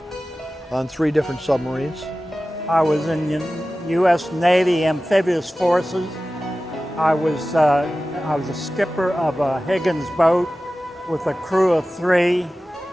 on 3 different submarines. I was in U.S. Navy Amphibious Forces. I was a skipper of a Higgins boat with a crew of 3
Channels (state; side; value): normal; both; correlation 0.96